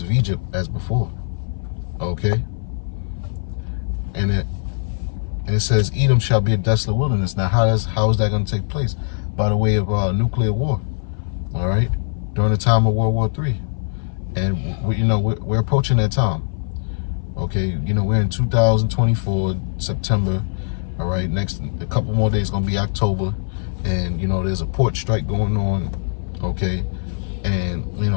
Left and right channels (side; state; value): right; silent; 59 dB below the other